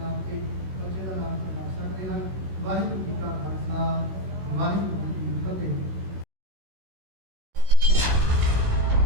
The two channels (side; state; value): left; late; 16 ms